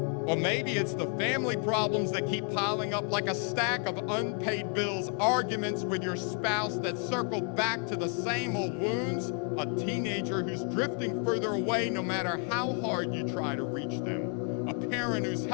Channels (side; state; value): right; quieter; 38.7 dB